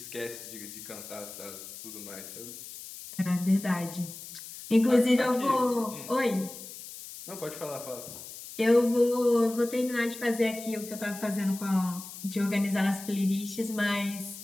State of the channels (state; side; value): noise; left; hiss, 13 dB below the sound